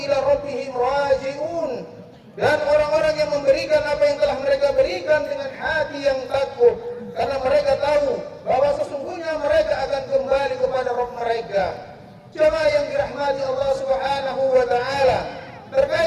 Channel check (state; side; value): identical; both; correlation 1.00